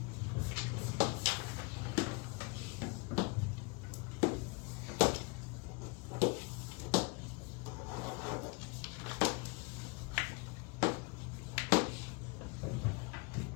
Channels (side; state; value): right; quieter; 29.7 dB